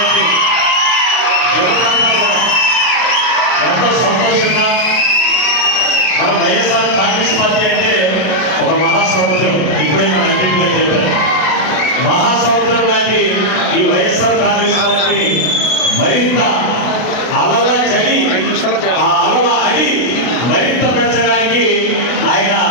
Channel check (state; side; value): late; right; 33 ms